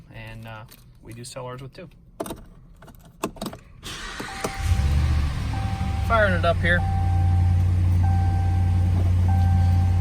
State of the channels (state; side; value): identical; both; correlation 1.00